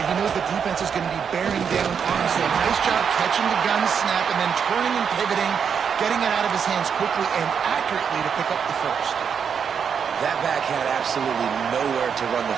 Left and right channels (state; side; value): quieter; left; 7.0 dB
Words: knows the defense is going to be bearing down on him. So a nice job catching the gun snap and then turning and pivoting, getting it out of his hands quickly and accurately to pick up the first. That back had absolutely nowhere to run the